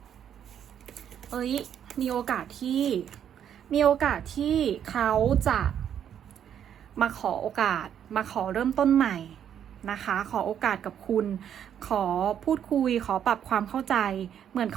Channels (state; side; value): quieter; left; 9.3 dB